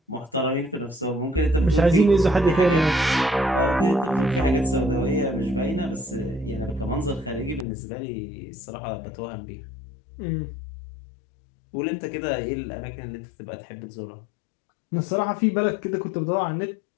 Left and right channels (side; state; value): right; drops out; at 7.7 s